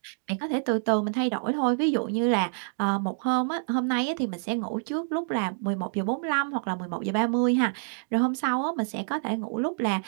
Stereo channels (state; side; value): silent; left; digital silence